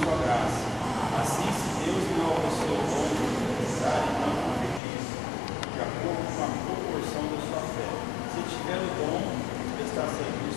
graça. Assim, se Deus não alcançou o dom necessário, não profetize, de acordo com a proporção da sua fé. Se tiver o dom de prestar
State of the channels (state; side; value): drops out; right; at 4.8 s